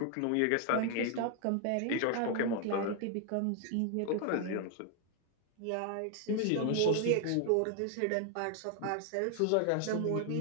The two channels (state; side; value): different; both; correlation 0.00